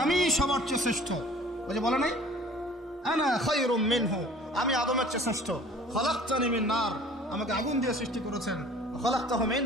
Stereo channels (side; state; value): both; normal; correlation 0.49